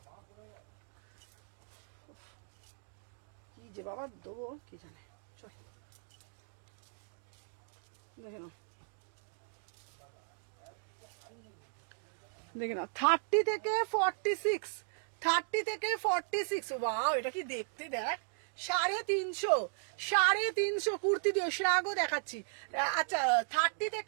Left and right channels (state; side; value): silent; left; digital silence